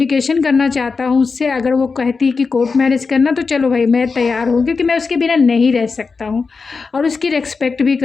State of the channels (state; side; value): quieter; right; 4.7 dB